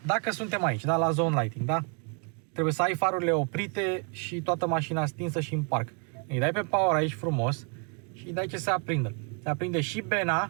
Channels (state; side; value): quieter; left; 37.6 dB